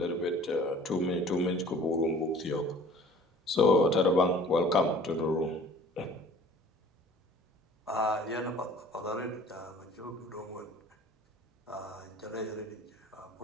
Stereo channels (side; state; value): both; normal; correlation 0.49